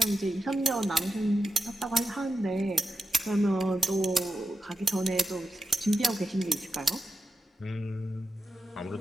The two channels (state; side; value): normal; both; correlation 0.89